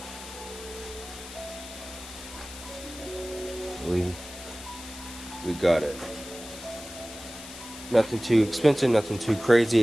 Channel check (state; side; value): noise; left; hiss, 13 dB below the sound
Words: We got it. Nothing too expensive, nothing too